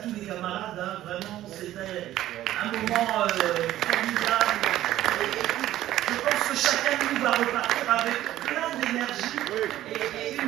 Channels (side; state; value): left; quieter; 13.8 dB